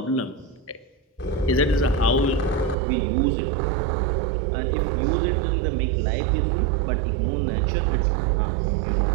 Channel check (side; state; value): left; drops out; at 2.8 s